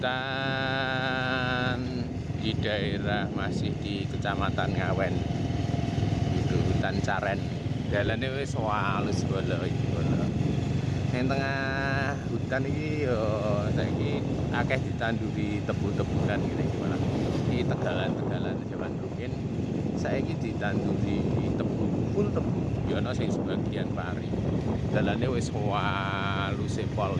di daerah masih di Kecamatan Ngawen. Itu hutan Caren. Dalane wis walus bolo iki bolo. Ning tengah hutan iki yo saiki akeh ditanduri tebu-tebunan ngene iki malah. Di tegalan-tegalan zaman rukin saiki ditanduri tebu, full tebu. Ya ana sing sebagian pari. Dalane wis walus pol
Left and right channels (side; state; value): both; identical; correlation 1.00